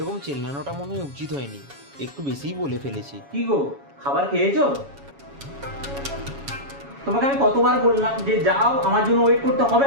চেল্লানোটা মনে হয় উচিত হয়নি, একটু বেশিই বলে ফেলেছি। কি গো, খাবার খেয়েছো? তোমাকে আমি কতবার বললাম যে যাও, আমার জন্য ওয়েট করতে হবে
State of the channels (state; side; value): late; left; 7.2 ms